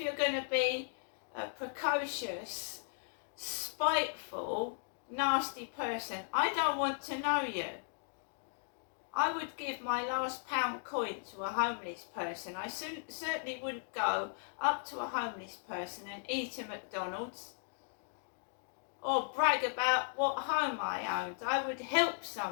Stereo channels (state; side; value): silent; right; digital silence